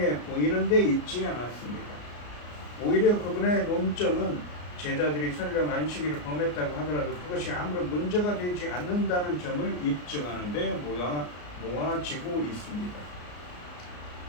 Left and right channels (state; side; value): late; right; 34 ms